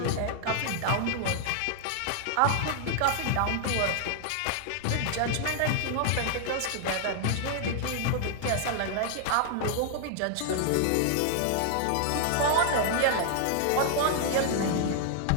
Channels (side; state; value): both; different; correlation -0.01